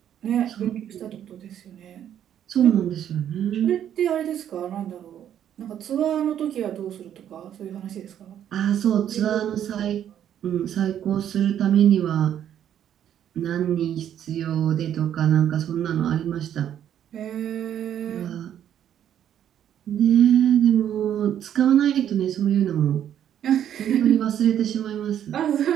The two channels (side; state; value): left; quieter; 10.1 dB